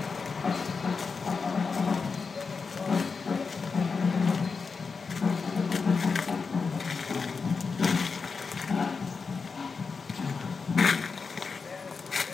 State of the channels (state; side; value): quieter; right; 5.0 dB